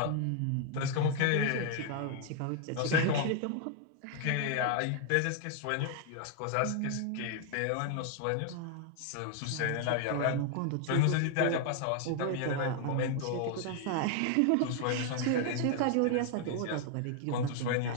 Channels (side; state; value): both; different; correlation 0.00